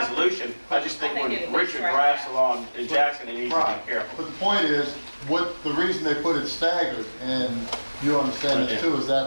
I just think when Richard drafts the law in Jackson, he needs to Right. be careful. But the point is, the reason they put it staggered, and you understand this too, is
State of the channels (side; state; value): both; inverted; correlation -1.00